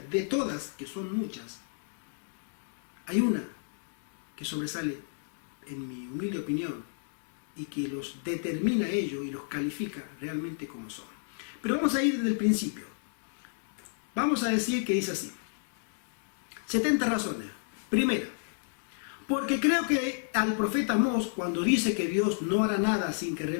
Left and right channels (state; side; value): silent; right; digital silence